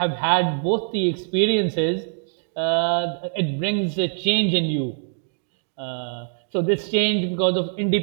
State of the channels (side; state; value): left; silent; digital silence